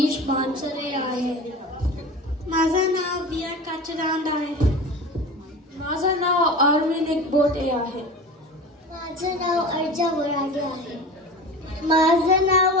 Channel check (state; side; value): normal; both; correlation 0.34